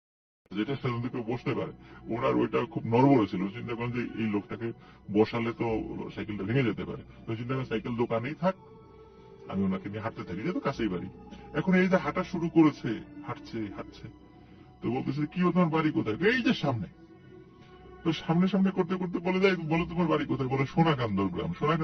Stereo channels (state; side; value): identical; both; correlation 1.00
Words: যেটা সেখান থেকে বসতে পারে, ওনার ওইটা খুব নড়বড়ে ছিল। চিন্তা করেন যে এই লোকটাকে বসালে তো সাইকেলটা ভেঙে যেতে পারে। তো চিন্তা করেন সাইকেল দোকানেই থাক, আমি ওনাকে নিয়ে হাঁটতে থাকি, যেহেতু কাছেই বাড়ি। এখন এই যে হাঁটা শুরু করেছে, হাঁটছে হাঁটছে, তো বলতেছে কি তোমার বাড়ি কোথায়, এই যে সামনে। তো সামনে সামনে করতে করতে বলে যায়, বলো তোমার বাড়ি কোথায়, বলে সোনাকান্দর গ্রাম।